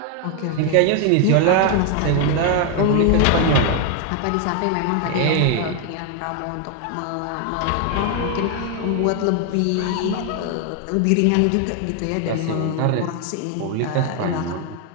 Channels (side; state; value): both; different; correlation 0.01